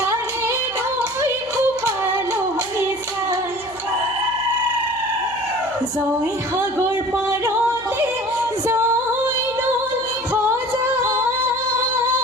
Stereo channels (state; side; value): noise; right; hum, 22 dB below the sound